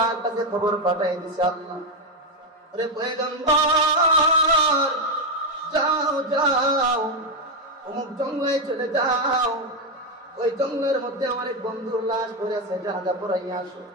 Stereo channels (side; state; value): both; normal; correlation 0.06